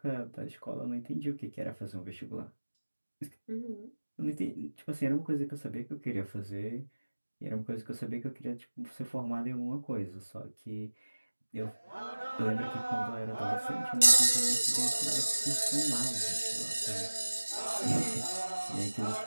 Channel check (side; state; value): both; inverted; correlation -1.00